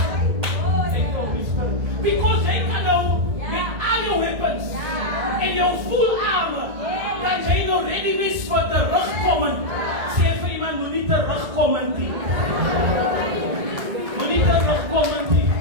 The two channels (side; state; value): left; late; 1.9 ms